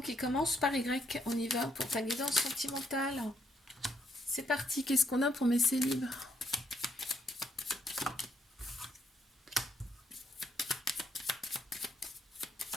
qui commencent par Y. On y va pour ta guidance sentimentale. C'est parti. Qu'est-ce qu'on a pour mes célibes?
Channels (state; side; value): normal; both; correlation 0.74